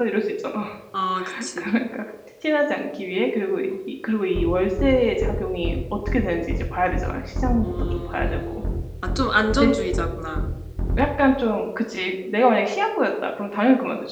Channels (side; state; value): both; identical; correlation 1.00